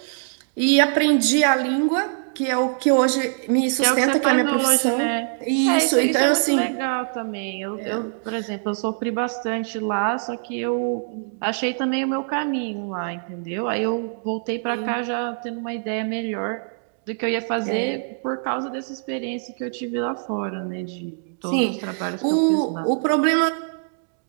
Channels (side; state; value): left; silent; digital silence